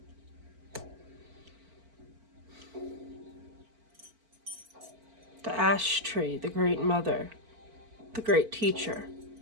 The ash tree, the great mother, the great teacher.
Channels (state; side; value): late; left; 4.5 ms